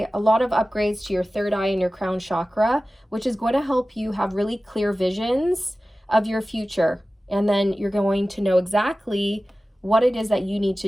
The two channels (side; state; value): both; normal; correlation 0.96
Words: a lot of upgrades to your third eye and your crown chakra, which is going to help you have really clear visions of your future. And then you're going to know exactly what it is that you need